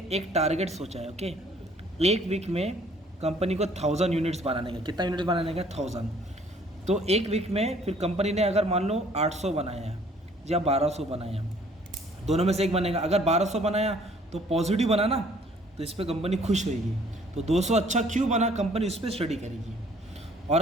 एक टारगेट सोचा है, ओके। एक वीक में कंपनी को 1000 यूनिट्स बनाने का। कितना यूनिट्स बनाने का? 1000। तो एक वीक में फिर कंपनी ने अगर मान लो 800 बनाया है या 1200 बनाया, दोनों में से एक बनेगा। अगर 1200 बनाया तो पॉजिटिव बना ना, तो इस पर कंपनी खुश होगी। तो 200 अच्छा क्यों बना, कंपनी इस पर स्टडी करेगी। और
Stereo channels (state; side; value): normal; both; correlation 0.58